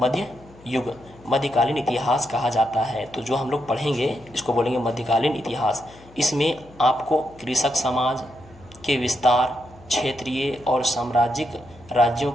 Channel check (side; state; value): left; noise; hum, 24 dB below the sound